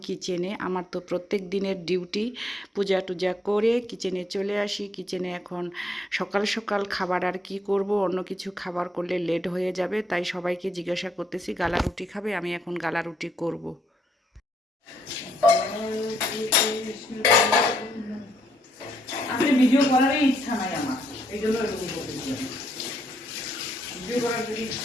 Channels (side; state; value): both; normal; correlation 0.74